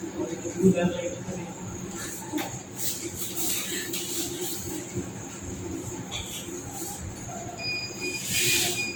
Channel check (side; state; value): both; identical; correlation 1.00